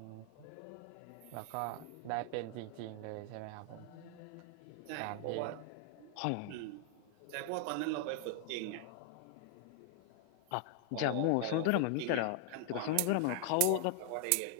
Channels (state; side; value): different; both; correlation 0.00